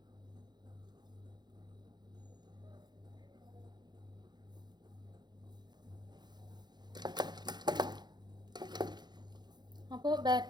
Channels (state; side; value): late; left; 0.21 ms